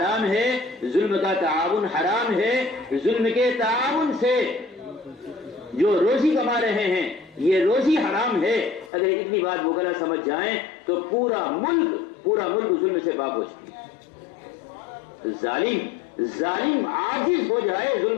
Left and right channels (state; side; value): drops out; right; at 8.9 s